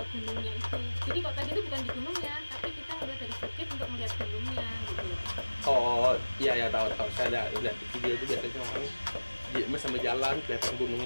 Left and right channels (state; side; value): inverted; both; correlation -1.00